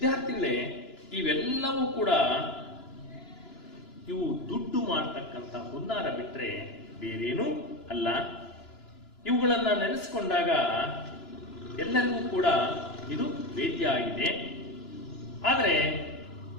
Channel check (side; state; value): right; late; 2.9 ms